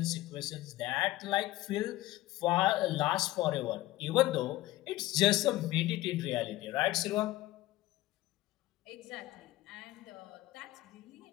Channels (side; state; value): right; quieter; 16.9 dB